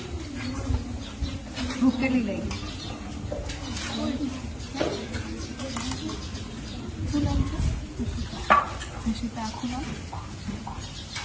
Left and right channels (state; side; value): identical; both; correlation 1.00